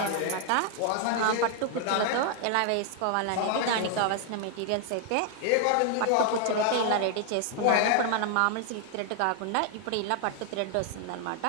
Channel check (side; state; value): both; different; correlation 0.00